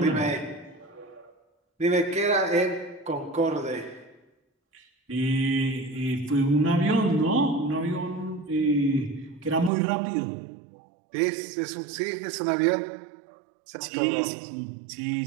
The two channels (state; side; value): drops out; left; at 9.7 s